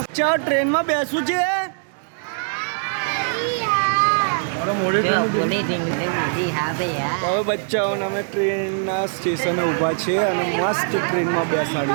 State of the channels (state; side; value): silent; left; digital silence